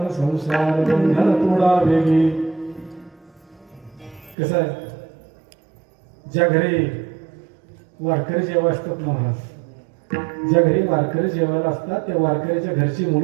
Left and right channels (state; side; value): drops out; left; at 4.4 s